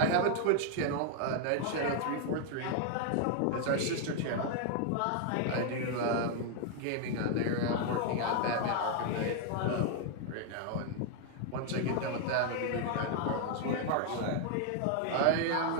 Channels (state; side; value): different; both; correlation 0.00